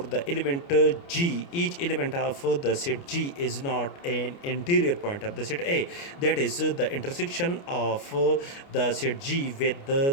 element G, each element of the set G is not an interior point of the set A. That is, the intersection of the set G with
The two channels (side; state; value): right; late; 29 ms